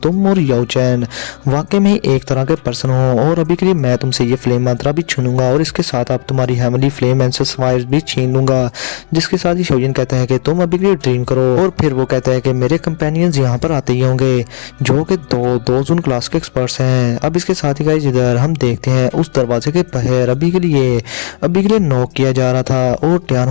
तुम और याओ चैन वाकई में एक तरह के पर्सन हो और अभी के लिए मैं तुमसे ये फ्लेम मंत्रा भी छीनूंगा और इसके साथ आप तुम्हारी हेवनली फ्लेम एंसेस फायर्स भी छीन लूंगा। जिसके साथ ही शाओयन कहता है कि तुम अभी के लिए ड्रीम करो और फिर वो कहता है कि मेरे कंपेनियंस यहाँ पर आते ही होंगे जो कि दो जोन क्लास के एक्सपर्ट्स हैं। अब इसके साथ ही गाइस इधर हम देखते हैं उस दरवाजे के बाहर अभी के लिए नॉक किया जा रहा था और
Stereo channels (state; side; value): silent; right; digital silence